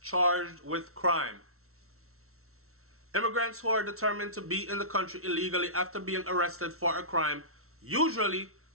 charged with crime. Immigrants who are determined to be in the country illegally after being arrested for a crime usually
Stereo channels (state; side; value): late; left; 0.63 ms